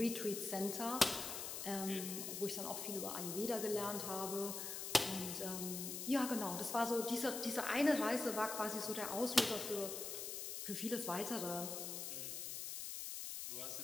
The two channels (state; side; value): noise; left; hiss, 5 dB below the sound